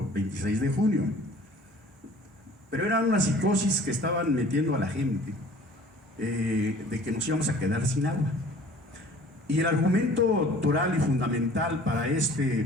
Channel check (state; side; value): normal; both; correlation 0.49